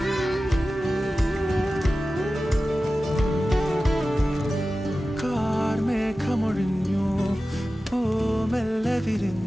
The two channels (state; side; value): normal; both; correlation 0.95